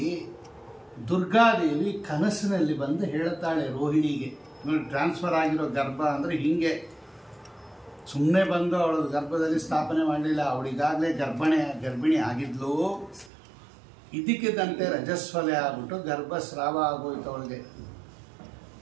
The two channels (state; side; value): drops out; left; at 13.3 s